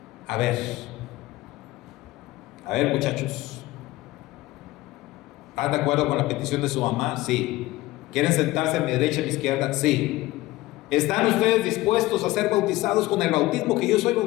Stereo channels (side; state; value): right; quieter; 18.3 dB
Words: a ver muchachos, ¿están de acuerdo con la petición de su mamá? Sí. ¿Quieren sentarse a mi derecha y a mi izquierda? Sí. ¿Están ustedes dispuestos a ser bautizados con el bautismo que yo soy